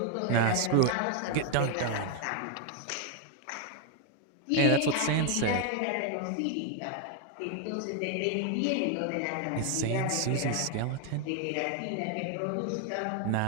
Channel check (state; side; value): different; both; correlation 0.01